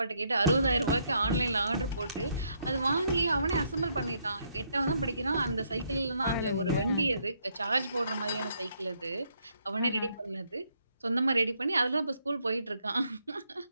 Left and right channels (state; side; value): inverted; both; correlation -0.73